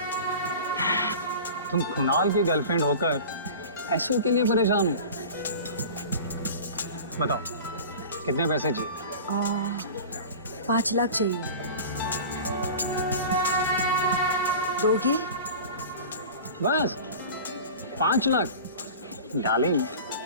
तुम कुणाल की गर्लफ्रेंड होकर पैसों के लिए परेशान हो? बताओ कितने पैसे चाहिए? 5 लाख चाहिए। दोगे? बस 5 लाख? डार्लिंग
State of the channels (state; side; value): inverted; both; correlation -0.36